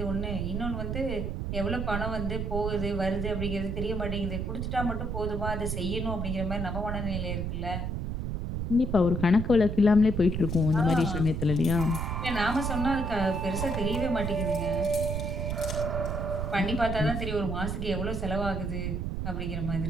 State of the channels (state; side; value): noise; right; rumble, 2 dB below the sound